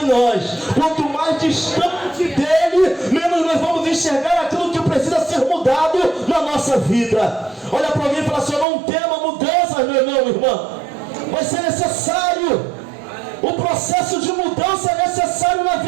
em nós. Quanto mais distante dEle, menos nós vamos enxergar aquilo que precisa ser mudado na nossa vida. Olha para alguém e fala assim: eu não tema mudanças, meu irmão. Vai ser necessário. O processo de mudança é necessário na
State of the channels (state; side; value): drops out; left; at 8.7 s